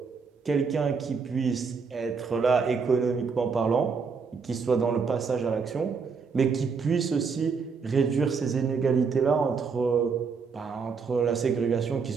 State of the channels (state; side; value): quieter; left; 5.4 dB